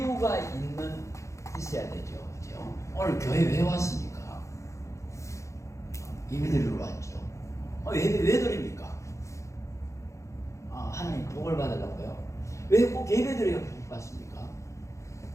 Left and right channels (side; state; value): right; late; 0.15 ms